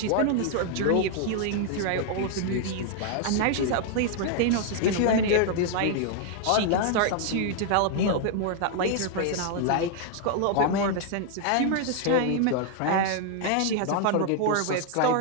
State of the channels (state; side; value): different; both; correlation 0.00